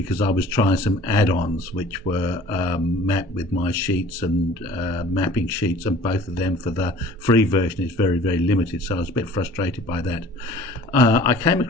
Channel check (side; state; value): both; normal; correlation 0.48